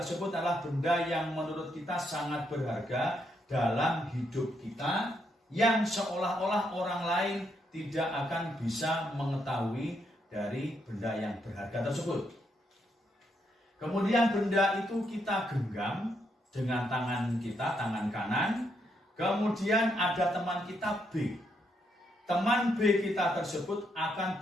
adalah benda yang menurut kita sangat berharga dalam hidup kita, yang seolah-olah orang lain tidak akan bisa mengetahui dari benda yang berharga tersebut. Kemudian benda itu kita genggam dengan tangan kita, tangan kanan. Kemudian ada teman kita B. Teman B kita tersebut akan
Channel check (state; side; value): normal; both; correlation 0.77